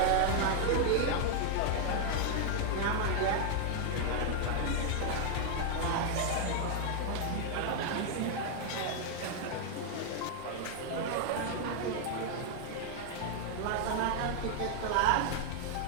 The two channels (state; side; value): different; both; correlation 0.00